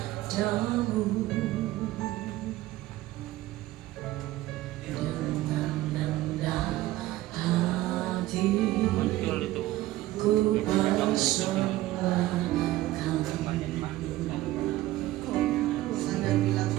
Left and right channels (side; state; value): left; quieter; 16.4 dB